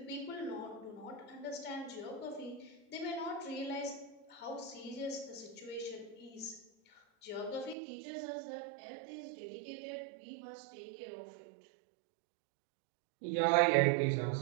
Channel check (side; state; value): left; drops out; at 7.8 s